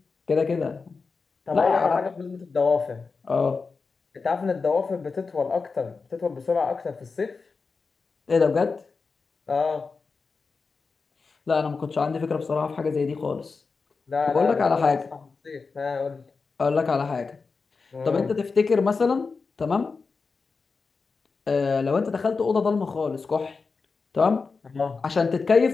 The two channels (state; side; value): quieter; right; 4.6 dB